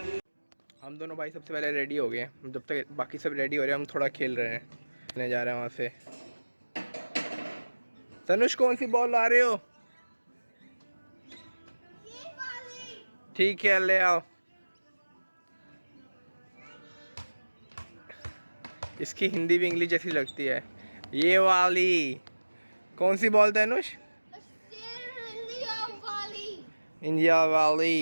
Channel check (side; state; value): both; inverted; correlation -1.00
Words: हम दोनों भाई सबसे पहले रेडी हो गए हैं। जब तक बाकी सब रेडी हो रहे हैं हम थोड़ा खेल रहे हैं। खेलने जा रहे हैं वहाँ से। तनुष कौन सी बॉल ला रहे हो? ठीक है, ले आओ। इसकी हिंदी भी इंग्लिश जैसी लगती है। ये वाली कौन सी बॉल तनुष? इंडिया